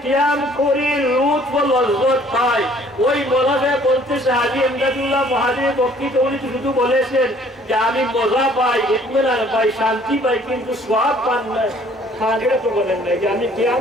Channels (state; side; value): normal; both; correlation 0.57